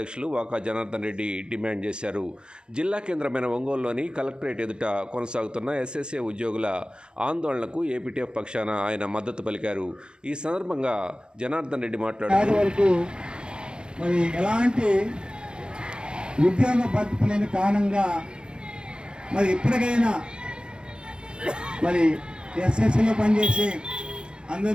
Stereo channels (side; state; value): left; late; 0.050 ms